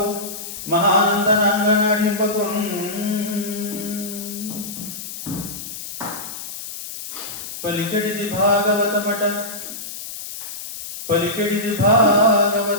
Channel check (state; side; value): noise; left; hiss, 9 dB below the sound